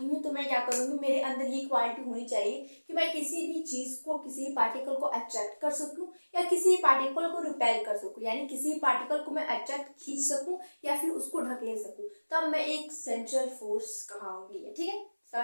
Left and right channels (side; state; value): both; inverted; correlation -1.00